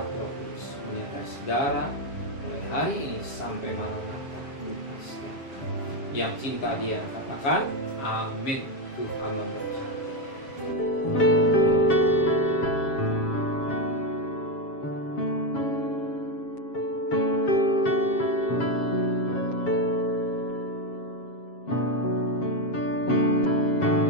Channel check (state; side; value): late; right; 7.4 ms